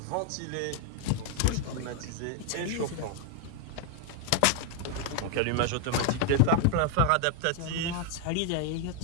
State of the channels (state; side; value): different; both; correlation 0.00